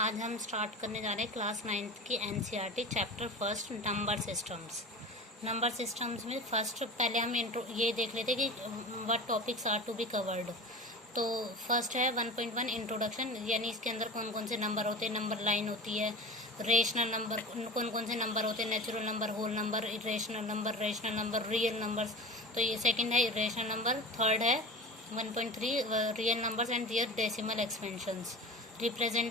हम start करने जा रहे हैं क्लास 9th की NCERT chapter first number systems. Number systems में फर्स्ट पहले हम ये देख लेते कि what topics are to be covered. तो फर्स्ट है 1.1 इंट्रोडक्शन, यानी इसके अंदर कौन कौन से नंबर होते हैं, नंबर लाइन होती है, रेशनल नंबर कौन कौन से नंबर होते हैं, natural number, whole number, irrational number, real numbers. तो ये सेकंड है इरेशनल नंबर। थर्ड है 1.3 real numbers and their decimal expansions,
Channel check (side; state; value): both; normal; correlation 0.32